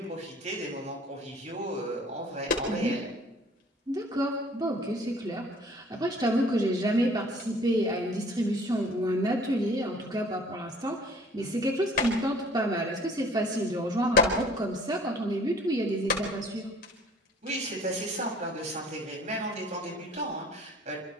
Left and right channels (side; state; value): both; normal; correlation 0.52